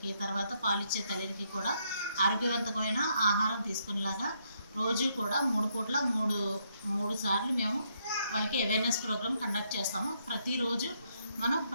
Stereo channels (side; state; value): both; inverted; correlation -0.75